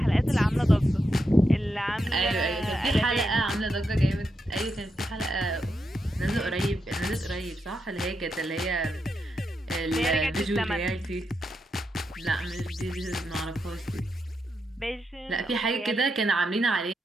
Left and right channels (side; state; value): both; normal; correlation 0.84